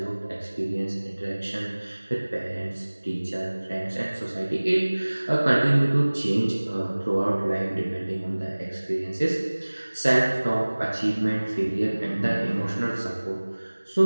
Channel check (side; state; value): both; inverted; correlation -1.00